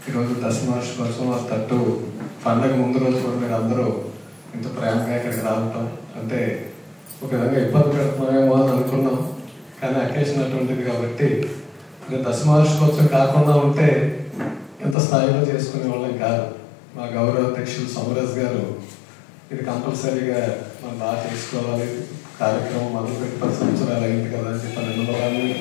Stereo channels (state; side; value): drops out; right; at 15.0 s